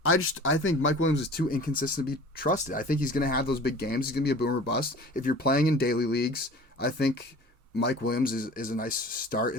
I think Mike Williams is too inconsistent to be trusted. I think he's going to have those big games. He's going to be a boomer bust. If you're playing in daily leagues, I think Mike Williams is a nice start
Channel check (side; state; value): both; normal; correlation 0.43